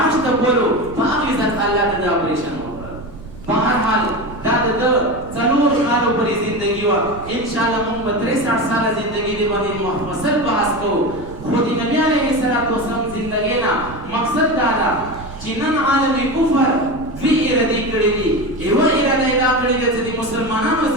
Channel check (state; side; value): noise; right; rumble, 15 dB below the sound